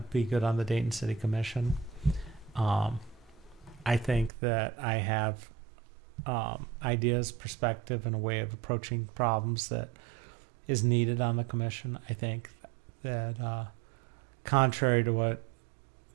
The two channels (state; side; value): drops out; left; at 4.3 s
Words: be good on the Dayton City Commission. I think that I have ideas, perspective, and a way of approaching problems that is needed on the commission. I think that contrary to what